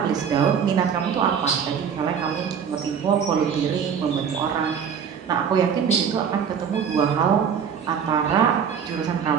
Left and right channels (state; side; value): quieter; left; 7.4 dB